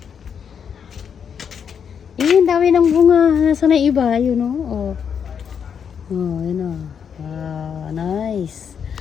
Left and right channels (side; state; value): right; quieter; 7.4 dB